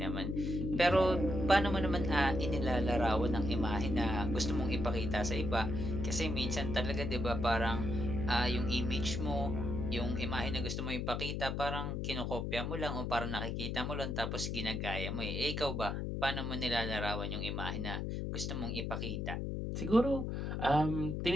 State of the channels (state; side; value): noise; left; hum, 2 dB below the sound